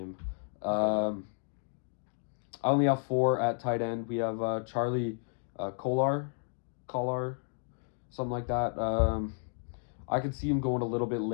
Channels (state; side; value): silent; right; 56 dB below the other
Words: I only have 4 at tight end. We have Charlie Collar, something like that. I could see him going a little bit